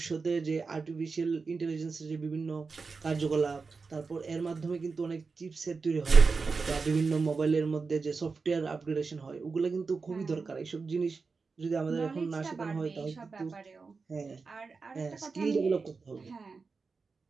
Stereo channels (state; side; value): quieter; left; 4.6 dB